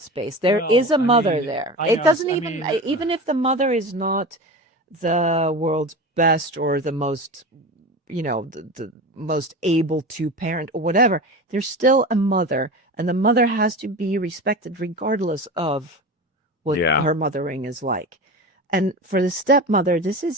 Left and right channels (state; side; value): normal; both; correlation 0.29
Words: space. There is Well, a I mother mean, there. I It know, doesn't I even, mean, even if the mother is not the world's best or the most, the most able to parent or whatever, there's still a mother, and the mother has to be respected regardless of what yeah. her mothering is like. And for the stepmother, this